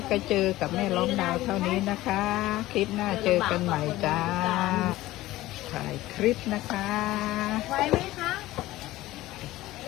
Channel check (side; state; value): right; quieter; 16.9 dB